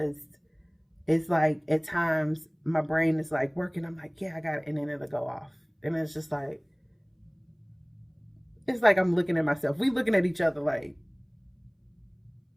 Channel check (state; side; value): identical; both; correlation 1.00